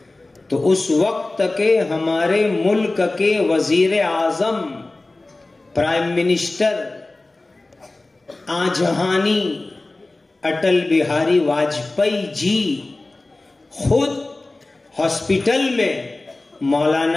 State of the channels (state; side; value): quieter; right; 3.0 dB